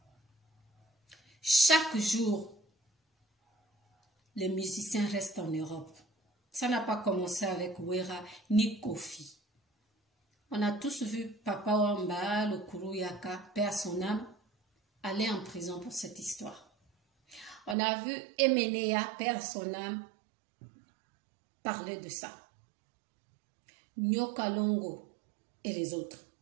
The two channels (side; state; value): left; drops out; at 17.8 s